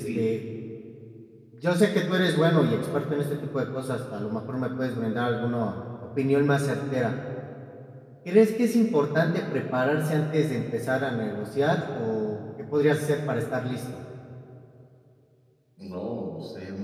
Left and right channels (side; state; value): both; identical; correlation 1.00